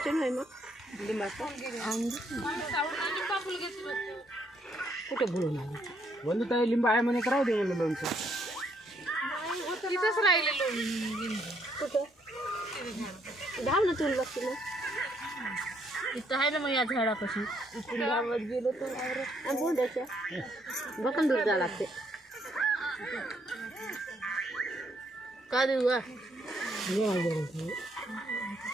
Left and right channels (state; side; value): normal; both; correlation 0.71